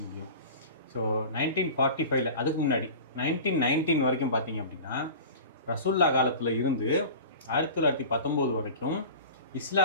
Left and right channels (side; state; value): both; inverted; correlation -0.36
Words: முடியும். ஸோ 1945 அதுக்கு முன்னாடி 1919 வரைக்கும் பார்த்தீங்க அப்படின்னா, ரசூல்லா காலத்தில் இருந்து 1919 வரைக்கும்